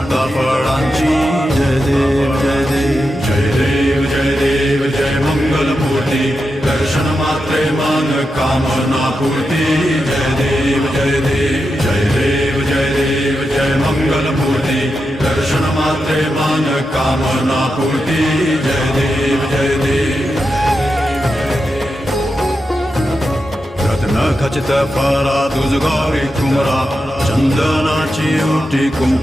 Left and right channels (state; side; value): normal; both; correlation 0.88